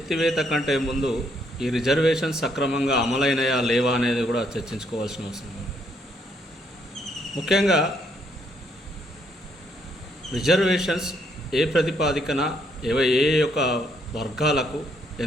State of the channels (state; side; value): normal; both; correlation 0.72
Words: కంటే ముందు ఈ రిజర్వేషన్స్ సక్రమంగా అమలైనయా లేవా అనేది కూడా చర్చించుకోవాల్సిన అవసరం ఉంది. ముఖ్యంగా రిజర్వేషన్స్ ఏ ప్రతిపాదికన ఏ యొక్క వర్గాలకు